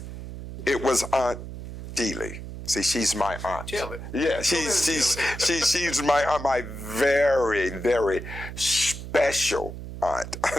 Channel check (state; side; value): noise; right; hum, 10 dB below the sound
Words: it was Aunt Dealey. See, she's my aunt. Tell it. Yeah, she's my very, very special aunt.